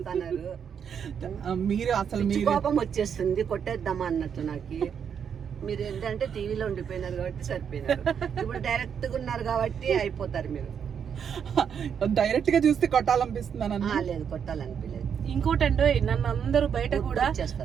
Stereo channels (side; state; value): left; quieter; 7.6 dB